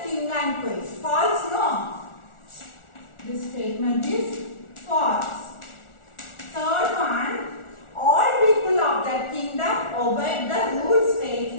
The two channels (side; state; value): right; late; 1.4 ms